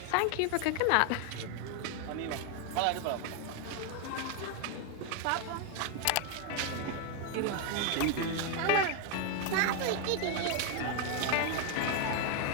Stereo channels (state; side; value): different; both; correlation 0.01